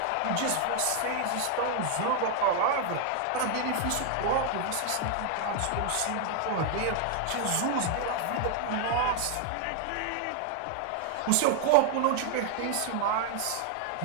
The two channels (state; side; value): different; both; correlation 0.00